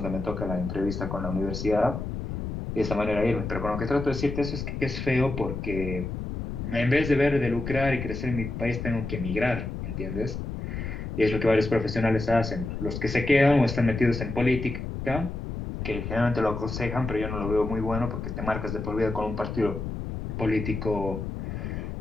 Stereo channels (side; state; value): left; noise; rumble, 5 dB below the sound